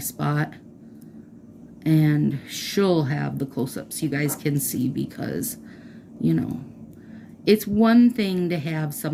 And she'll have the close-ups you guys can see because, you know, it's one thing to have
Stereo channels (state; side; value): identical; both; correlation 1.00